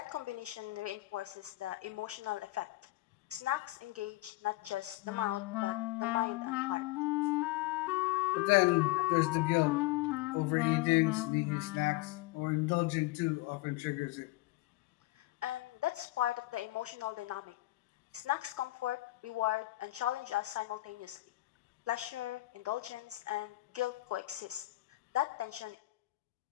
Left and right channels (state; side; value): quieter; right; 18.9 dB